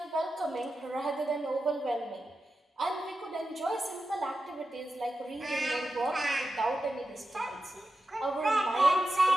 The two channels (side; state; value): both; normal; correlation 0.91